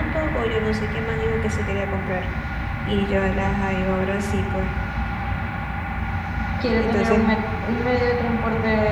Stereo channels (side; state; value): both; identical; correlation 1.00